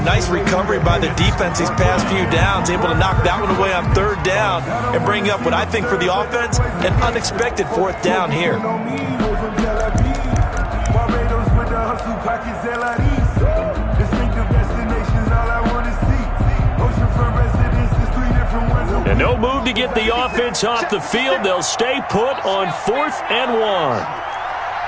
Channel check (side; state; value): both; identical; correlation 1.00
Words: nice recovery by the defense these past few downs, able to knock that one away on 3rd down and bring up what I think for the offense, an unexpected 4th down here. And no move to get the offense off the field. They'll stay put on 4th and 1.